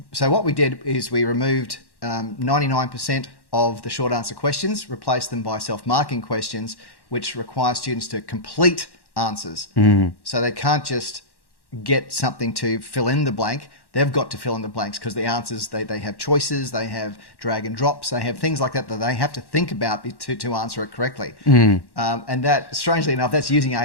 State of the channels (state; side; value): late; right; 1.1 ms